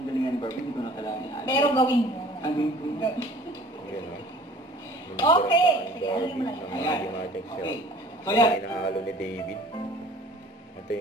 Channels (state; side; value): normal; both; correlation 0.50